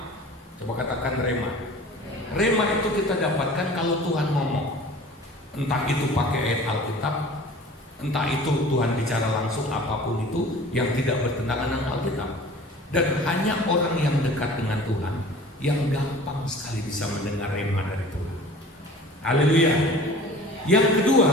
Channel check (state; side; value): normal; both; correlation 0.43